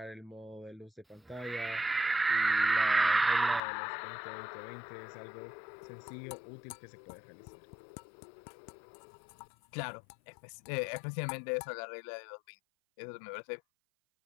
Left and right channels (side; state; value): right; drops out; at 3.6 s